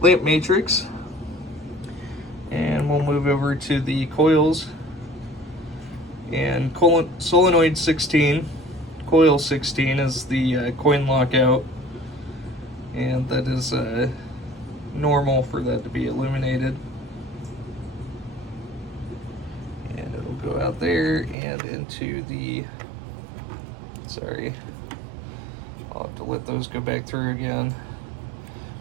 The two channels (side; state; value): left; drops out; at 21.4 s